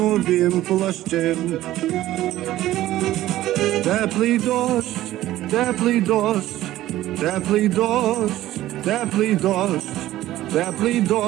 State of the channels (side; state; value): left; quieter; 14.8 dB